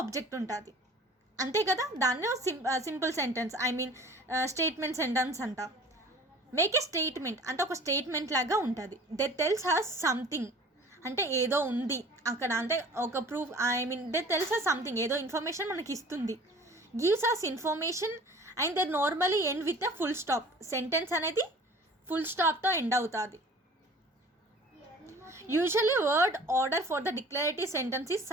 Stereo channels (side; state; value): both; normal; correlation 0.46